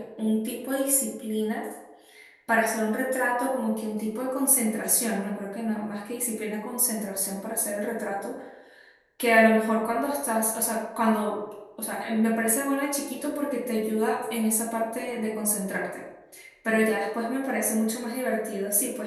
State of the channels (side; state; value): both; identical; correlation 1.00